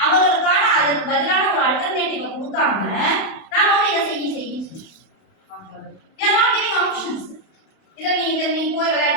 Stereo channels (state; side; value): late; right; 31 ms